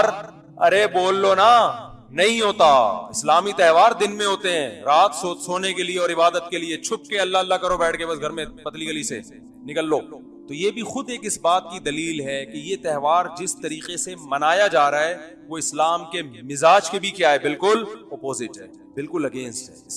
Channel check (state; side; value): identical; both; correlation 1.00